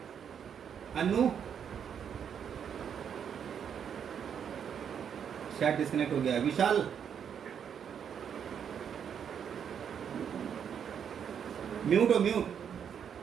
अन्नू शायद डिस्कनेक्ट हो गया। विशाल, म्यूट हो म्यूट।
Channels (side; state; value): left; quieter; 8.0 dB